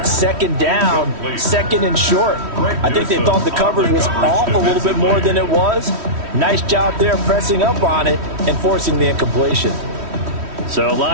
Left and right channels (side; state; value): left; late; 3.1 ms